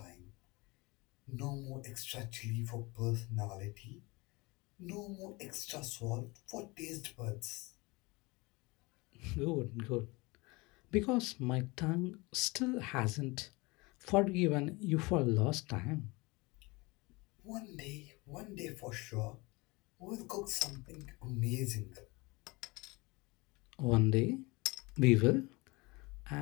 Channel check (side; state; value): right; quieter; 24.8 dB